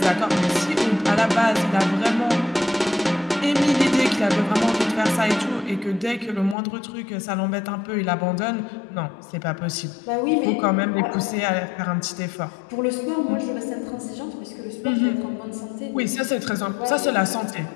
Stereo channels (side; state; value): right; drops out; at 6.6 s